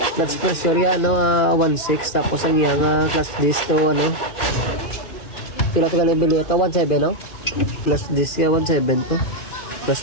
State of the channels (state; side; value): late; right; 2.5 ms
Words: clutch pressure ya ano 16 tapos ang iya nga clutch disc to ano pila to kali bili ito 17 no clutch disc ya 17 to clutch